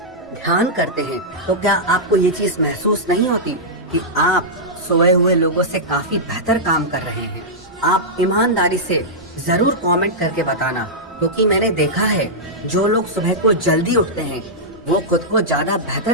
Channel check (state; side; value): normal; both; correlation -0.10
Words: ध्यान करते हैं, तो क्या आपको ये चीज महसूस नहीं होती कि आप सोए हुए लोगों से काफी बेहतर काम कर रहे हैं? आप ईमानदारी से जरूर कमेंट करके बताना, क्योंकि मैंने देखा है जो लोग सुबह को जल्दी उठते हैं वो खुद को ज्यादा